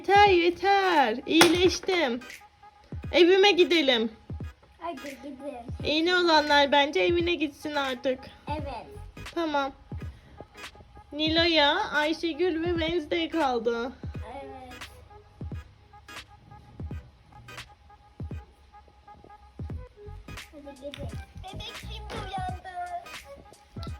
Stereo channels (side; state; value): both; identical; correlation 1.00